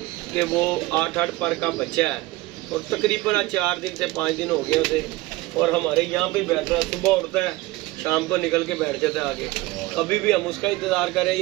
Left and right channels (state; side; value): quieter; left; 19.6 dB